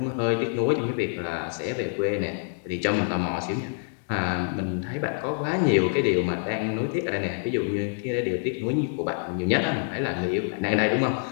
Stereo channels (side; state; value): right; silent; 61 dB below the other